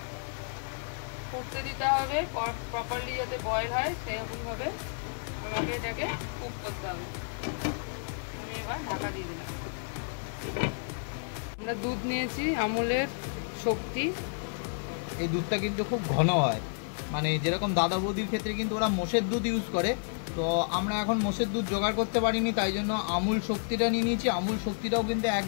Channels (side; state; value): right; silent; digital silence